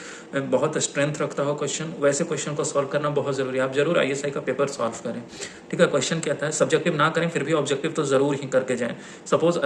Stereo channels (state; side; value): identical; both; correlation 1.00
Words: बहुत स्ट्रेंथ रखता हो क्वेश्चन, वैसे क्वेश्चन को सॉल्व करना बहुत ज़रूरी है। आप जरूर ISI का पेपर सॉल्व करें, ठीक है। क्वेश्चन क्या था, सब्जेक्टिव ना करें फिर भी ऑब्जेक्टिव तो ज़रूर ही करके जाएं। Suppose